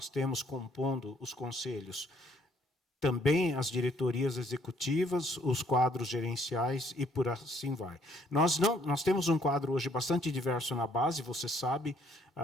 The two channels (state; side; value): normal; both; correlation 0.65